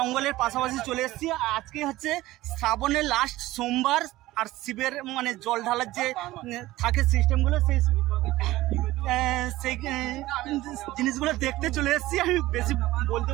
পাশাপাশি চলে এসেছি। আজকে হচ্ছে শ্রাবণের লাস্ট সোমবার, আর শিবের মানে জল ঢালার যে থাকে সিস্টেমগুলো, সেই জিনিসগুলো দেখতে চলে এসেছি। আমি বেশি বলতে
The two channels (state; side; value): quieter; left; 17.1 dB